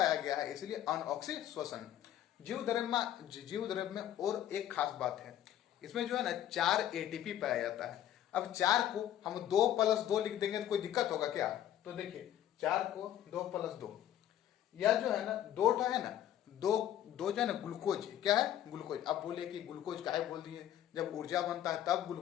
गया है इसलिए अनऑक्सीश्वसन। जीव द्रव्य में और एक खास बात है, इसमें जो है ना 4 एटीपी पाया जाता है। अब 4 को हम 2+2 लिख देंगे तो कोई दिक्कत होगा क्या? तो देखिए 4 को 2+2, यह जो है ना दो है ना, दो जो है ना ग्लूकोज, क्या है, ग्लूकोज। अब बोले कि ग्लूकोज काहे बोल दिए, जब ऊर्जा बनता है तब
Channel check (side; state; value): right; quieter; 11.6 dB